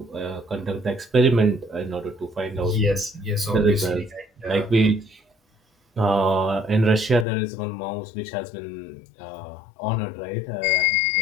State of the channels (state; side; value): drops out; right; at 7.2 s